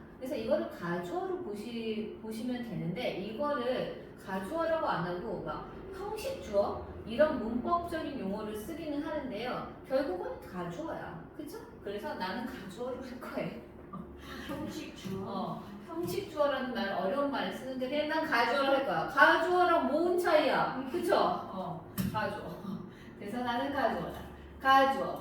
그래서 이거를 가주어로 보시면 되는데 이거를 가주어라고 안 하고 막 형식 주어 이런 문법적인 용어를 쓰기는 하는데요. 결국은 가주어야. 그쵸? 그래서 나는 가주어로 할 거예요. 형식 주어 형식 주어라는 말 어려운 말을 쓰는데 그냥 난 가주어로 할 거야. 가주어랑 뭔 차이야? 그쵸? 가주어. 그래서 나는 가주어다.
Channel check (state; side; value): identical; both; correlation 1.00